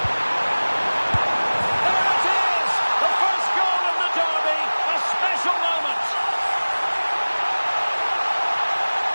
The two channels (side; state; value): both; inverted; correlation -1.00